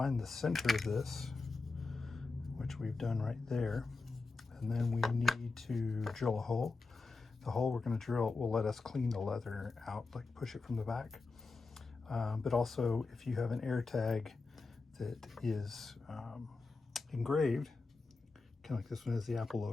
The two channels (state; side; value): quieter; right; 4.0 dB